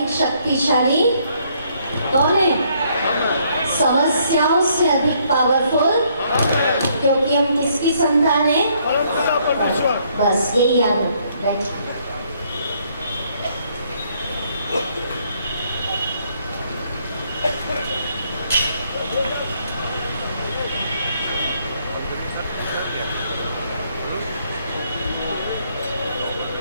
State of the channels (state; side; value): inverted; both; correlation -0.68